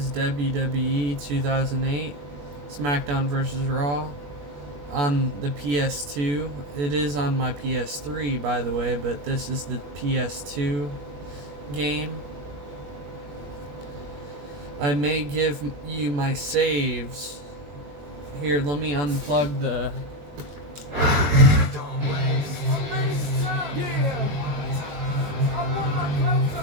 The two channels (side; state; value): left; late; 21 ms